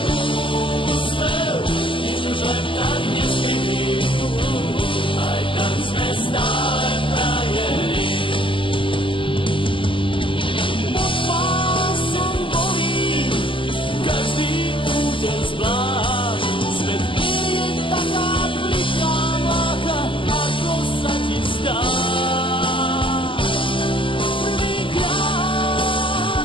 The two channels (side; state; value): right; late; 0.25 ms